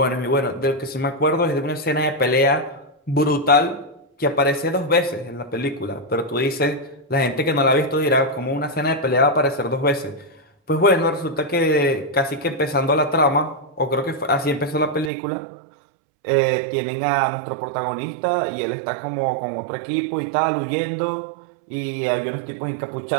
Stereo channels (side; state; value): left; drops out; at 15.1 s